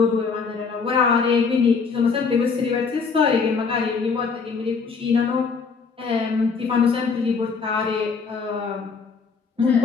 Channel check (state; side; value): quieter; right; 5.1 dB